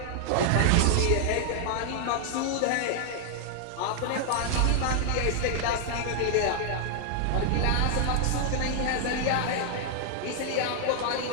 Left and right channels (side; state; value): both; different; correlation 0.00